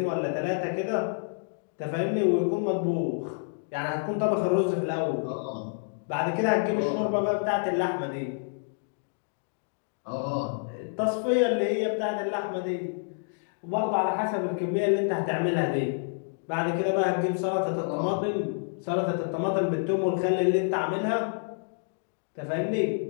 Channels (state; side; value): silent; right; digital silence